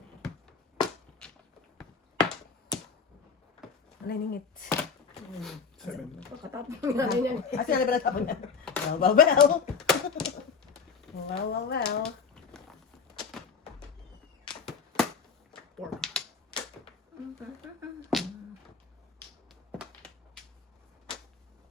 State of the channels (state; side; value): quieter; right; 5.8 dB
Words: Ano ningit? 7. Pagkatapos ng nanay niyan. Asa na ba natapon na? Well. Well. 4.